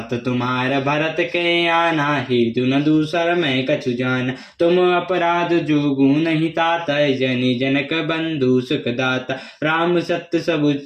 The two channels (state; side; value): identical; both; correlation 1.00